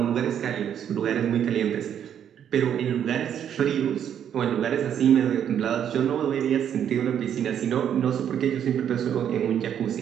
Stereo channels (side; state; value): left; quieter; 9.2 dB